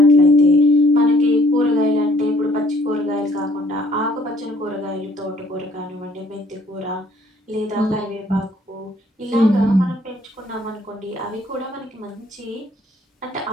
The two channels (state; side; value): normal; both; correlation 0.61